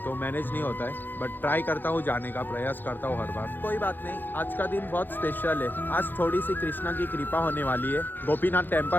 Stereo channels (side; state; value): right; late; 0.091 ms